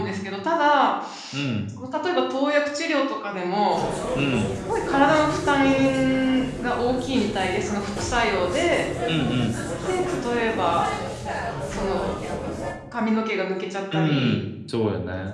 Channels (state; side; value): identical; both; correlation 1.00